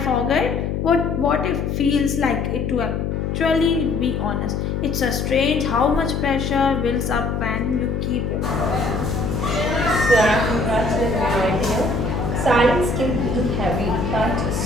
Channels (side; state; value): left; noise; hum, 1 dB below the sound